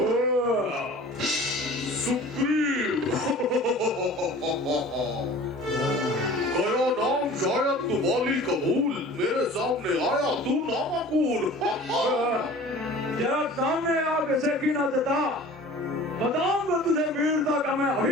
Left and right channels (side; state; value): both; normal; correlation 0.43